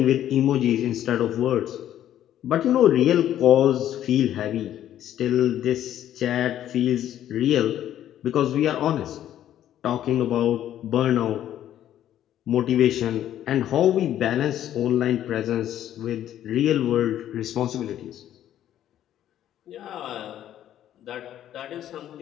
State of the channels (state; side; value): quieter; right; 11.5 dB